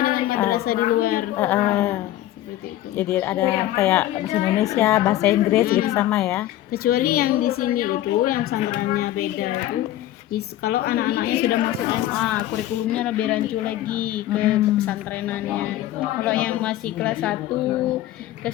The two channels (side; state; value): right; quieter; 14.0 dB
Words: dengan madrasah di luar. Seperti itu. Jadi ada kayak bahasa Indonesia, bahasa Inggris gitu sama ya? Kecuali yang di sini itu yang pesantrennya beda itu. Kalau anak-anaknya sudah masuk SMA, kurikulumnya lebih rancu lagi ke pesantrenannya. Kalau yang masih kelas 1,